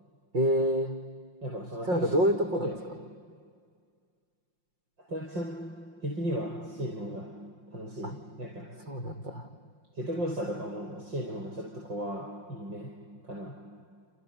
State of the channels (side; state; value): left; late; 5.6 ms